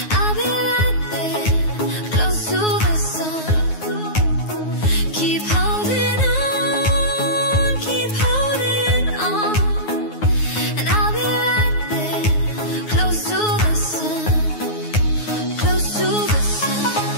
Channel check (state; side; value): late; right; 9.5 ms